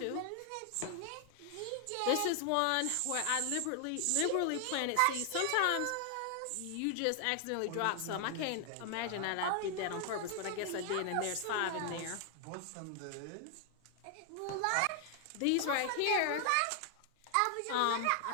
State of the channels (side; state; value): both; different; correlation 0.00